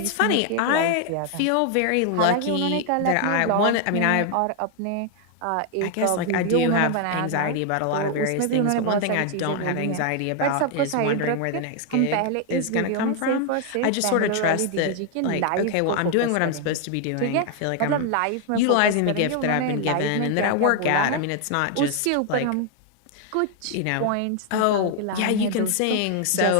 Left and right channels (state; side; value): different; both; correlation 0.00